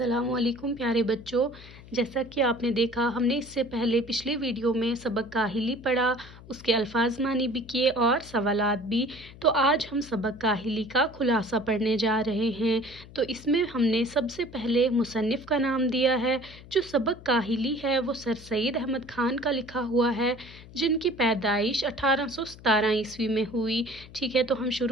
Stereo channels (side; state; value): left; noise; hum, 19 dB below the sound